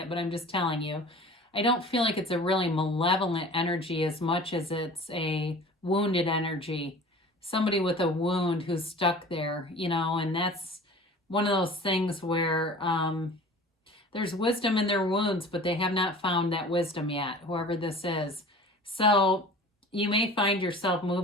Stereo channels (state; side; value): normal; both; correlation 0.42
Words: but I'm just telling you. I don't feel like it's a really malevolent energy as much as it's a wounded energy. Somebody with a wound who's stuck there, and that's one of those things where there's wisdom in their wounds, but they have not found that wisdom yet, whoever this is. So you may find yourself